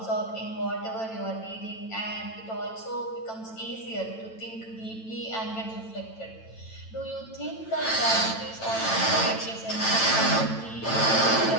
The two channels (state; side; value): late; right; 9.0 ms